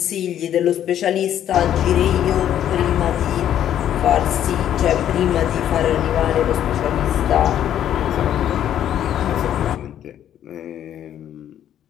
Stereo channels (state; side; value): quieter; right; 10.7 dB